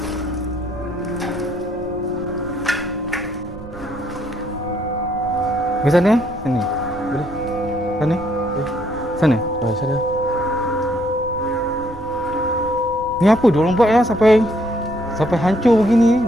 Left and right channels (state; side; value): noise; right; rumble, 16 dB below the sound